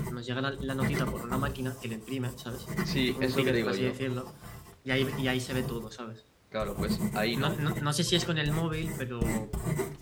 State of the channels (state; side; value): identical; both; correlation 1.00